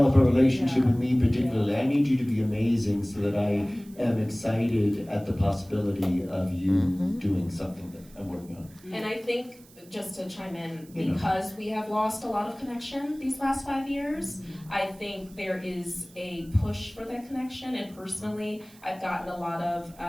a relationship with me particularly. I need you to be amazing so that I am excited at the possibility of you doing something that I'm working on. And I think, just to chime in, because we have lost a lot of connection these last 5 years, I think there is a push for that connection, and personally, I've gotten a lot of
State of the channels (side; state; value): right; noise; hiss, 25 dB below the sound